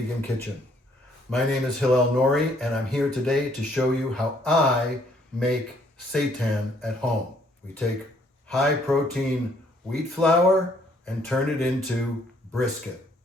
Kitchen. My name is Hillel Nori and I'm here today to show you how I make seitan at home. We take high protein wheat flour and turn it into brisket.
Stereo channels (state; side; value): normal; both; correlation 0.65